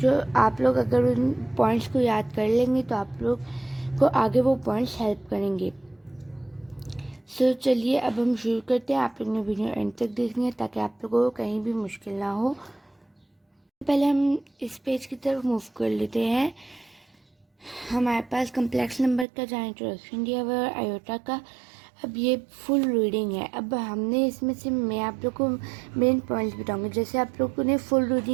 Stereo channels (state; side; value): drops out; left; at 19.2 s